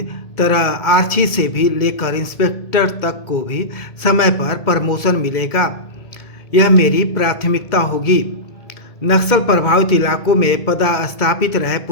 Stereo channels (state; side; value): late; right; 2.2 ms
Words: तरह आरक्षी से भी लेकर इंस्पेक्टर तक को भी समय पर प्रमोशन मिलेगा। यह मेरी प्राथमिकता होगी। नक्सल प्रभावित इलाकों में पदस्थापित रहे